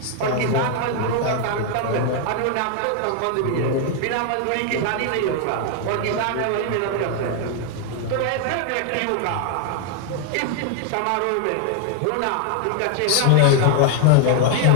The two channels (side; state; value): both; different; correlation 0.00